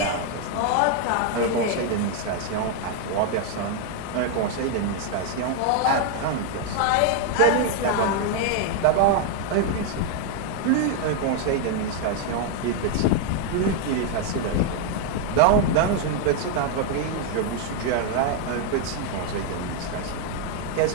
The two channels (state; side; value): different; both; correlation 0.00